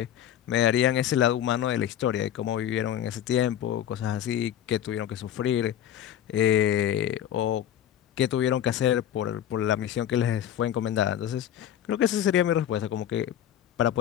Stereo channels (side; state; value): right; quieter; 10.7 dB